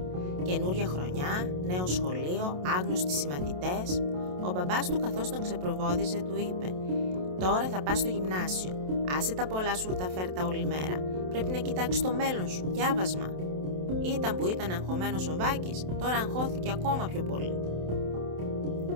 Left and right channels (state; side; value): late; left; 27 ms